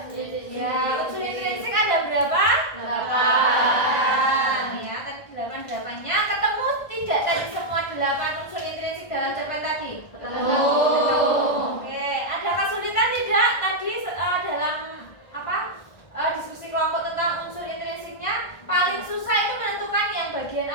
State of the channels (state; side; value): late; right; 1.5 ms